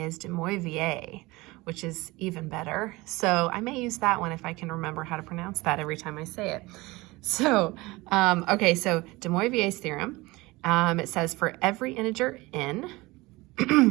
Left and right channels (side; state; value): left; quieter; 21.6 dB